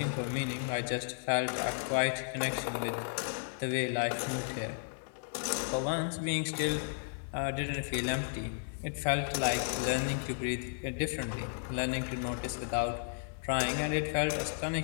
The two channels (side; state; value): right; silent; digital silence